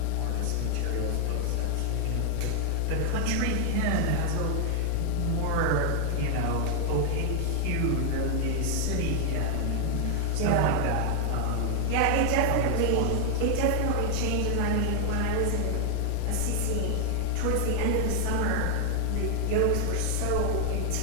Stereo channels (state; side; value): different; both; correlation 0.00